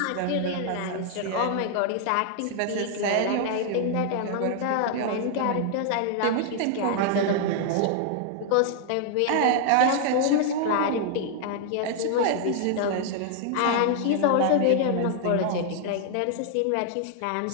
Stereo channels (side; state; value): both; different; correlation 0.00